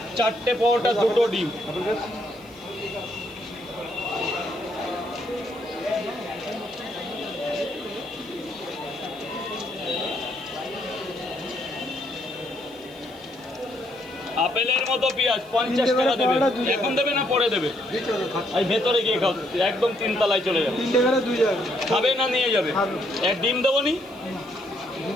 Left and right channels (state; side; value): noise; right; hiss, 26 dB below the sound